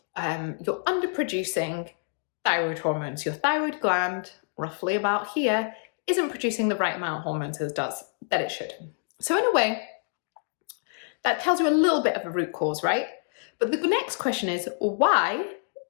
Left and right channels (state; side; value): silent; right; 55 dB below the other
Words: underproducing thyroid hormones. Your thyroid gland, roughly about here, isn't producing the right amount of hormones that it should. So in a way, that tells you a little bit of a root cause, right? But the next question is, why